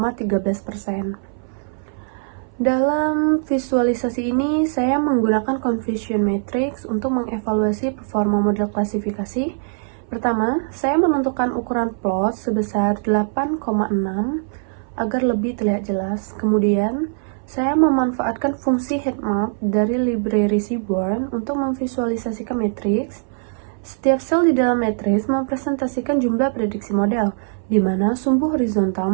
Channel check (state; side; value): silent; left; 59 dB below the other